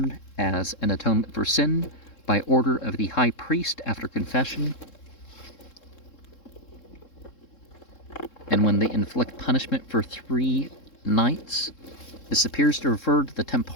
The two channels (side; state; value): right; late; 3.7 ms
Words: as an atonement for sin by order of the high priest after confession, and when they inflict punishment for 3 nights. This appears to refer to the